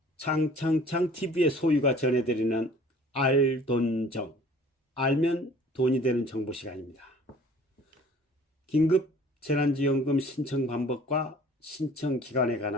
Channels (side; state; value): both; normal; correlation 0.51